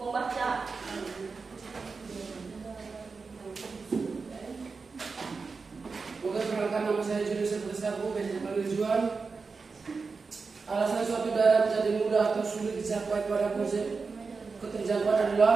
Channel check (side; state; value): left; quieter; 4.6 dB